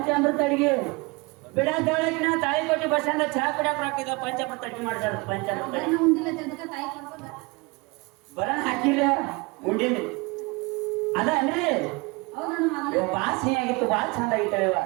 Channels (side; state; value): left; quieter; 26.6 dB